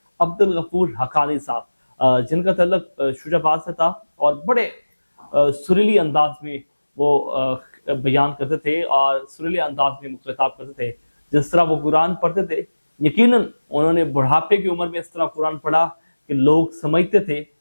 عبد الغفور حقانی صاحب جن کا تعلق شجاع آباد سے تھا اور بڑے سریلی انداز میں وہ بیان کرتے تھے اور سریلی انداز میں خطاب کرتے تھے. جس طرح وہ قرآن پڑھتے تھے، یقیناً انہوں نے بڑھاپے کی عمر میں اس طرح قرآن پڑھا کہ لوگ سمجھتے تھے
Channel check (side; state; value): both; inverted; correlation -1.00